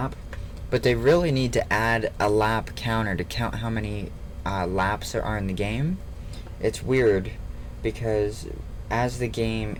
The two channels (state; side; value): identical; both; correlation 1.00